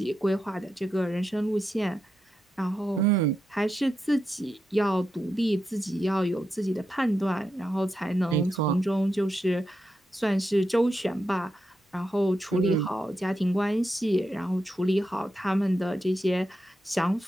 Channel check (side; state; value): both; normal; correlation 0.86